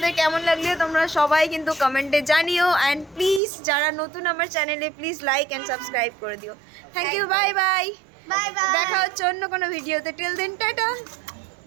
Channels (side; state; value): left; drops out; at 3.4 s